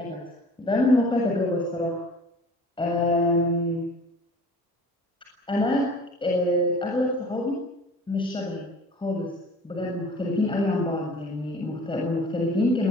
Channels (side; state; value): both; normal; correlation 0.45